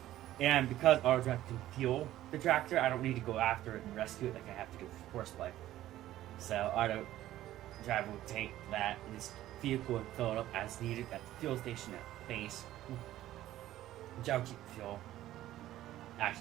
And because auto drive can fuel the tractor, I don't need to go after it and rescue it like I have to do for horseplay. So auto drive will take that and this vehicle and fill it up as needed at the fuel station at base. Which I'll keep the fuel.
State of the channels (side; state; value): left; quieter; 14.0 dB